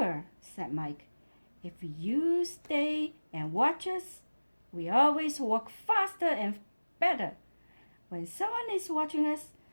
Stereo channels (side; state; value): both; inverted; correlation -1.00